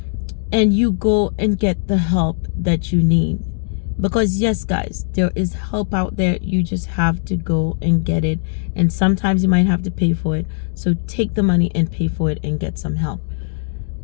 and you go and get the help that you need. Because yes, guys, there is help out there. You just have to go and get it. And sometimes you might have to pay for it. So take the money and pay for it and get some help.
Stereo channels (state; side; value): silent; right; digital silence